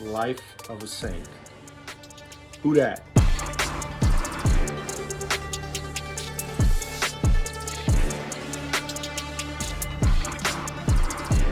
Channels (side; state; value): both; identical; correlation 1.00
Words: Life of a Saint. Whodat?